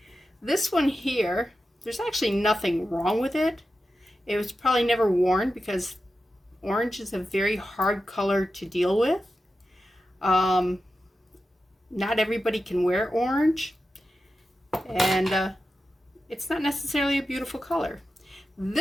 this one here, there's actually nothing wrong with it. It was probably never worn because orange is a very hard color to deal with. Not everybody can wear orange, and it's not necessarily a beautiful color.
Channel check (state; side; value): normal; both; correlation 0.91